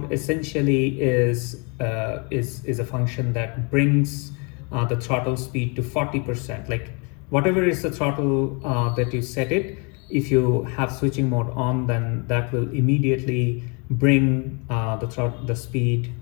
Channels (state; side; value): quieter; right; 33.5 dB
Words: essentially is a function that brings the throttle speed to 40%. Like whatever is the throttle that you set it, if you have switching mode on, then that will immediately bring the speed